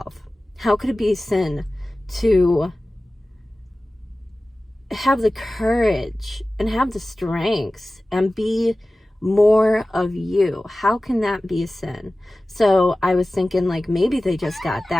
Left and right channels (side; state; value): both; normal; correlation 0.97